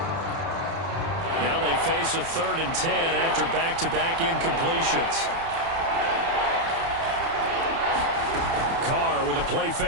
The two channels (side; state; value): left; late; 30 ms